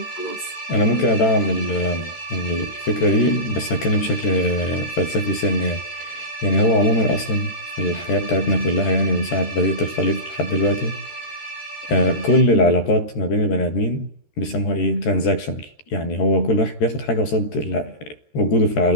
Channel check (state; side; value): late; right; 13 ms